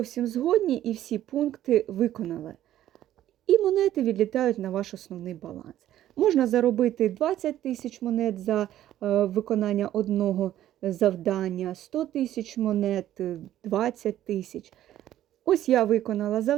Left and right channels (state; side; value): quieter; left; 12.6 dB